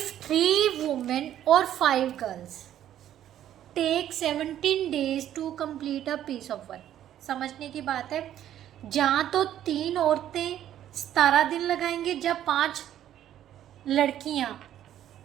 3 वुमेन और 5 girls take 17 days to complete a piece of work. समझने की बात है, जहाँ तो 3 औरतें 17 दिन लगाएंगे, जब 5 लड़कियाँ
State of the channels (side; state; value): left; quieter; 11.4 dB